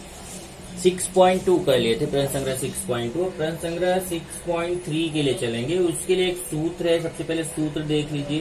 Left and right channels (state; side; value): identical; both; correlation 1.00